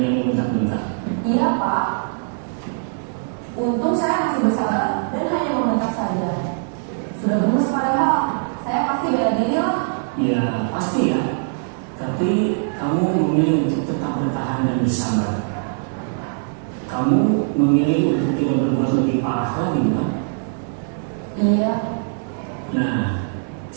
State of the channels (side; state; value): left; silent; digital silence